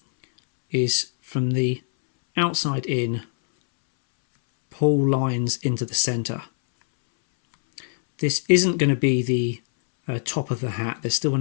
is from the outside in, pull lines into the center. This isn't going to be the top of the hat. There's still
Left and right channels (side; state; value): right; silent; 64 dB below the other